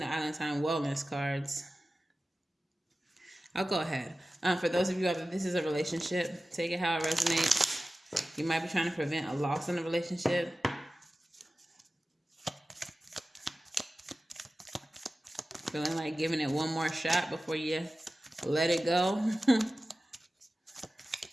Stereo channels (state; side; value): normal; both; correlation 0.95